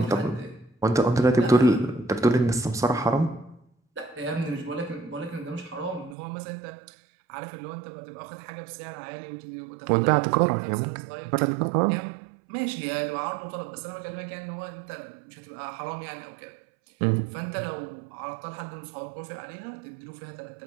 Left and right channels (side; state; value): left; drops out; at 6.2 s